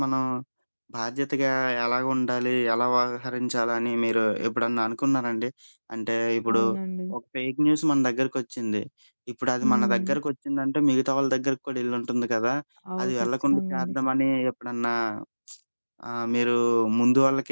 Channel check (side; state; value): both; inverted; correlation -1.00